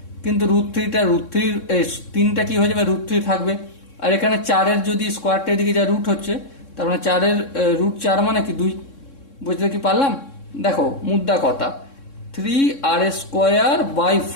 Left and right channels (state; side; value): late; right; 3.6 ms